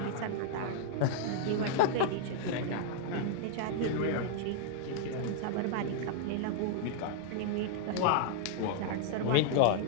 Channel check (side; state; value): both; different; correlation -0.01